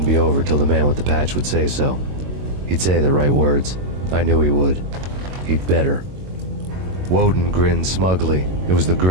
be over till the man with the patch would say so. He'd say the right words. I knew he would. He'd better. Woden grinned smugly. It was the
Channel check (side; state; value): left; late; 22 ms